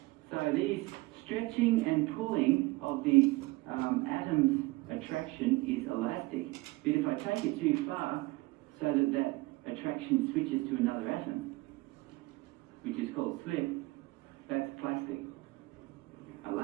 So these stretching and pulling of the atom's attraction is elastic. But if I take it too far, so that that attraction switches to another atom, which is called slip, that's plastic.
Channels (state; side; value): quieter; left; 22.0 dB